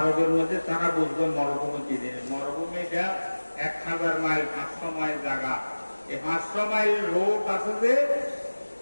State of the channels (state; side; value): inverted; both; correlation -1.00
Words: মধ্যে তারা বুঝবে মরুভূমি কি জিনিস। মরুভূমিটা 1000 মাইল 500 মাইল জায়গা। এই 500 মাইল রোড আছে যে